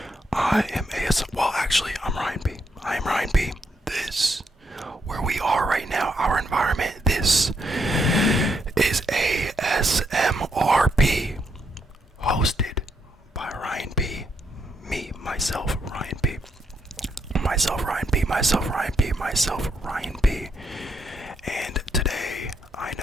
I'm Ryan B. I am Ryan B. This, where we are right now, our environment, this is ASMRP, hosted by Ryan B. Me, myself, Ryan B. Myself, Ryan B. And today, I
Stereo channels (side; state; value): both; normal; correlation 0.78